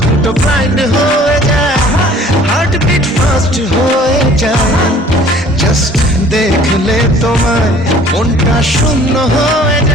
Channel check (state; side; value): normal; both; correlation 0.52